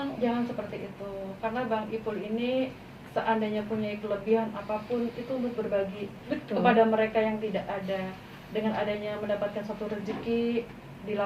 Jangan seperti itu, karena Bang Ipul ini seandainya punya kelebihan apapun itu untuk berbagi kepada mereka yang tidak ada. Dengan adanya mendapatkan suatu rezeki,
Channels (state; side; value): identical; both; correlation 1.00